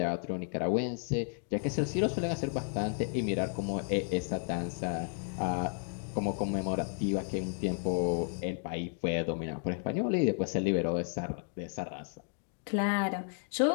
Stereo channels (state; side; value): silent; right; 56 dB below the other